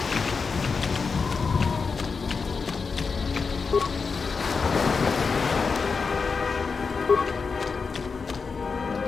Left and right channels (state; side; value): quieter; right; 5.0 dB